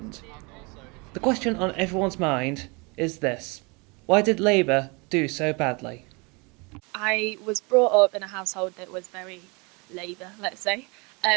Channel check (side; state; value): left; quieter; 29.2 dB